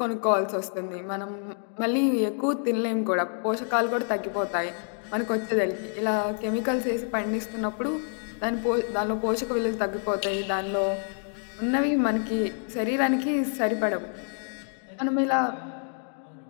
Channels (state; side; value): silent; right; 60 dB below the other